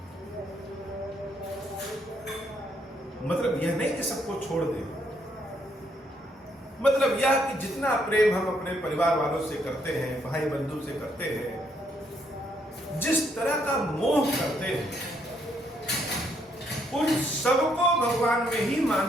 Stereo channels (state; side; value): normal; both; correlation 0.72